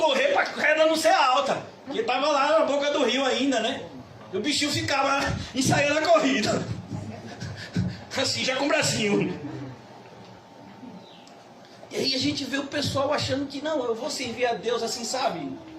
para a corrida não ser alta. Porque estava lá na boca do rio ainda, né? E o bichinho ficava ensaiando a corrida. Assim, já com o bracinho. E aí a gente vê o pessoal achando que não, eu vou servir a Deus assim, sabe?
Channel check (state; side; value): identical; both; correlation 1.00